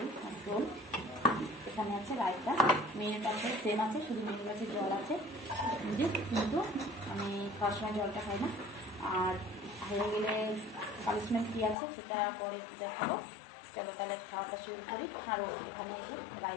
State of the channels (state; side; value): drops out; right; at 11.8 s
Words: আর ঝোল, এখানে আছে রায়তা, মেনুটা আছে সেম আছে, শুধু মেনু আছে জল আছে কিন্তু আমি খাওয়ার সময় জলটা খাই না। আর হয়ে গেলে পানিশমেন্ট কী আছে সেটা পরে দেখাবো। চলো তাহলে খাওয়াটা শুরু করি। আর এখানে এসে